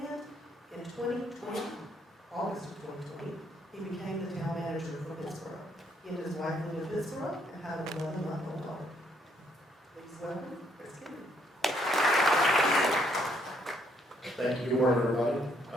in 2020, August of 2020, he became the town manager for Pittsboro. He and his wife live in Pittsboro and have an 11-month-old daughter. Please welcome Chris Kennedy. Thank you. Good morning, everybody.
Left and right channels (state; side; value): normal; both; correlation 0.70